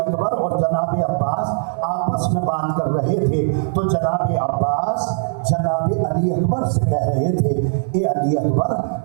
اور جناب عباس آپس میں بات کر رہے تھے تو جناب عباس جناب علی اکبر سے کہہ رہے تھے اے علی اکبر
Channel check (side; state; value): left; silent; digital silence